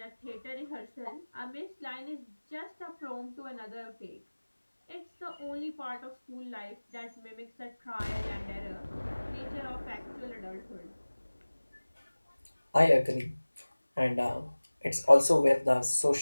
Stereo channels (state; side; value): inverted; both; correlation -1.00